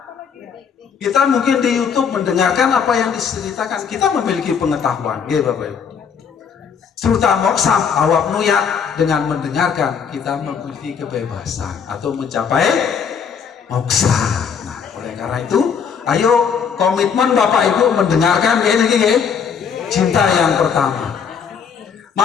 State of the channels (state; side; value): quieter; right; 6.8 dB